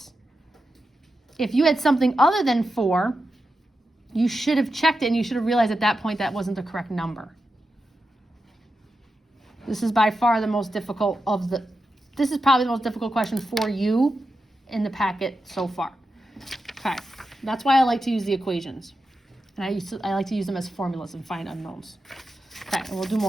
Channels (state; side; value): normal; both; correlation 0.89